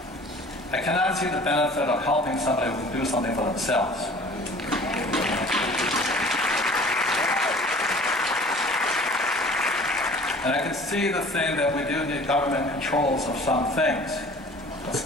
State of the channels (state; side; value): normal; both; correlation 0.47